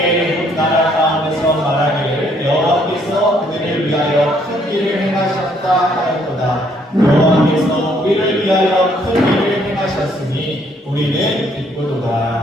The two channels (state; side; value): normal; both; correlation 0.67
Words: 나라 가운데서 말하기를 여호와께서 그들을 위하여 큰 일을 행하셨다 하였도다. 여호와께서 우리를 위하여 큰 일을 행하셨으니 우리는